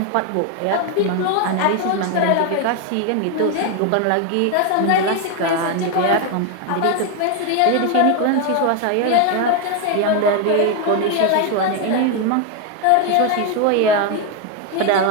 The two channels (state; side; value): different; both; correlation 0.01